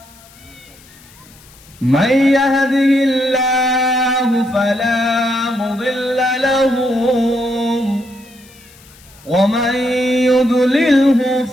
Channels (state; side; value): noise; left; hiss, 25 dB below the sound